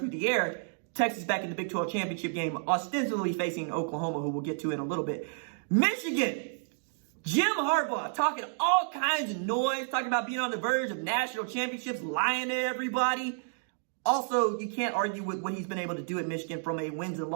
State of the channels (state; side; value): silent; left; digital silence